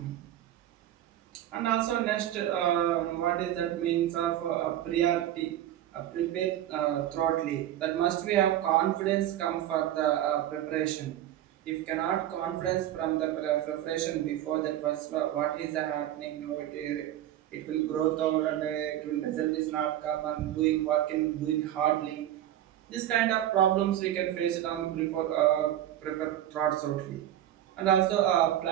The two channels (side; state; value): left; quieter; 12.3 dB